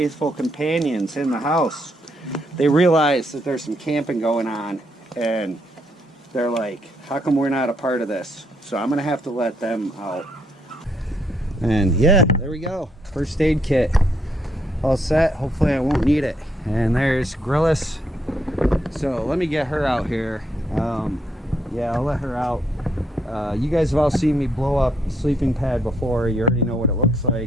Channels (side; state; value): both; normal; correlation 0.74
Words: companions in the house. They realize that there's some camping going on, and they're like, how come we're not a part of this? So I'm gonna have to let them out. And yeah, there we go, first aid kit all set. Hopefully I won't need it. And there's Grillis. So let me get her out here. Yeah, I'll let her out. You guys have all seen me blow up a sleeping pad before. You already know what it looks